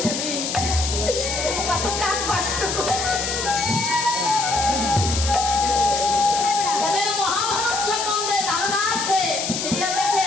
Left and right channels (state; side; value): noise; left; hiss, 3 dB below the sound